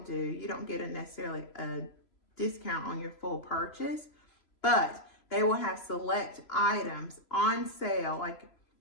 you don't get necessarily a discount on your full purchase, but they will have select items on sale, like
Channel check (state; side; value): late; right; 3.0 ms